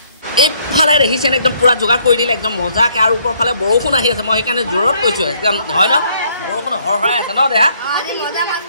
এইফালে দেখিছেনে একদম পুৰা যোগাৰ কৰি দিলে একদম মজাকৈ আৰু ওপৰৰ ফালে বৰষুণ আহি আছে মই সেইকাৰণে জোৰত কৈছোঁ একদম হয় ন বৰষুণ হৰহৰাই আছে ন দেহা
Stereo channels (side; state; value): both; inverted; correlation -0.67